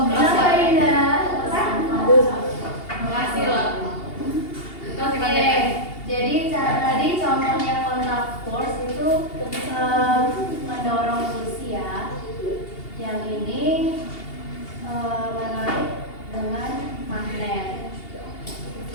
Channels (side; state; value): right; late; 2.8 ms